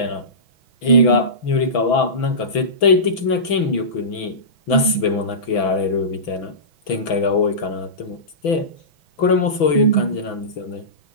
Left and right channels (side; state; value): right; late; 6.0 ms